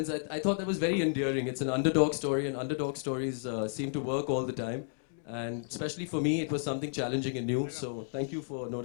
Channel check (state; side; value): silent; right; digital silence